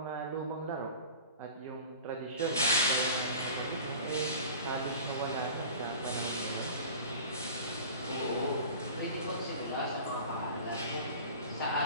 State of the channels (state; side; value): inverted; both; correlation -0.39